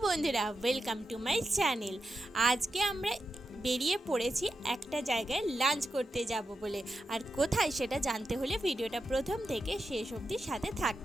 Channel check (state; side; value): normal; both; correlation 0.88